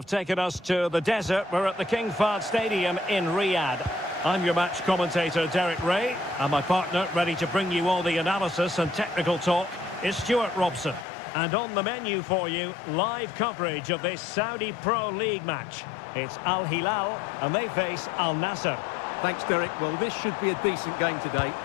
taken us to the desert. We're at the King Fahd Stadium in Riyadh. I'm your match commentator, Derek Ray, and my partner, ready to bring you all the analysis and technical talk, is Stuart Robson. And on the menu for you, live coverage of this Saudi Pro League match. It's Al Hilal, and they face Al Nassr. Thanks, Derek. Well, this should be a decent game today.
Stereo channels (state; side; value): drops out; right; at 11.1 s